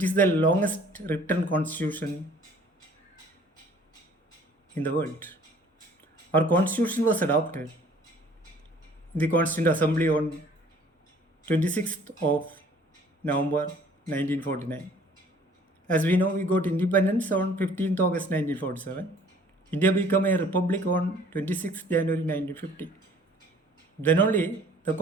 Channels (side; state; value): both; normal; correlation 0.55